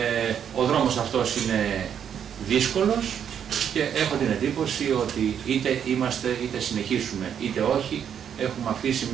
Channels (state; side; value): quieter; left; 8.5 dB